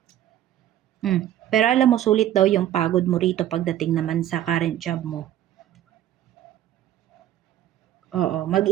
Pero alam mo, sulit daw yung pagod mo rito pagdating naman sa current job mo. Oo,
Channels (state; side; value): quieter; left; 12.1 dB